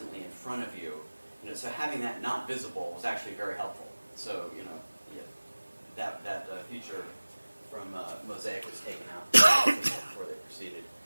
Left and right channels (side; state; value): both; inverted; correlation -1.00